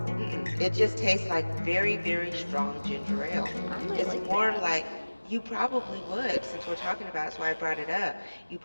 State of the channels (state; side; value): inverted; both; correlation -1.00